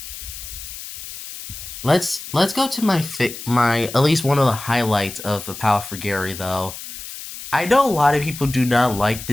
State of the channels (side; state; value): left; noise; hiss, 11 dB below the sound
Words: let's go to my at least one of the highlights of A Power for Gary though. I know a lot of people do not like